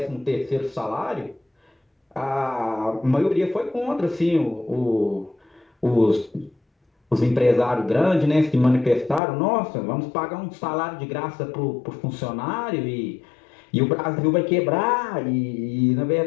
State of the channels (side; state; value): right; drops out; at 9.2 s